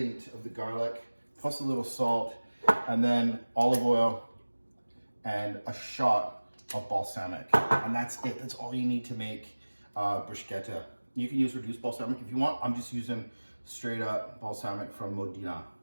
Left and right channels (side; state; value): both; inverted; correlation -1.00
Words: of the garlic, plus a little salt, and then olive oil and a shot of balsamic. And that's it. That's all you need to make bruschetta. You can use reduced balsamic if you want. I'm just using straight up balsamic from Modena.